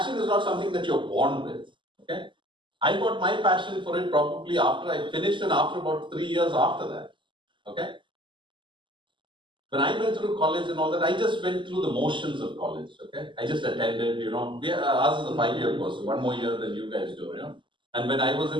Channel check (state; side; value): late; left; 0.24 ms